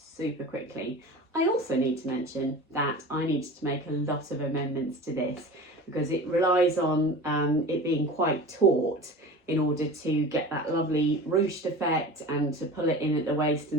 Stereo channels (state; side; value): normal; both; correlation 0.35